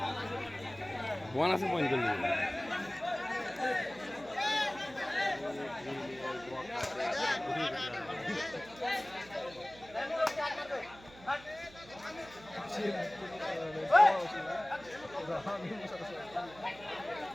বোন আছে পয়েন্ট করলি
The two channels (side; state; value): right; noise; hum, 20 dB below the sound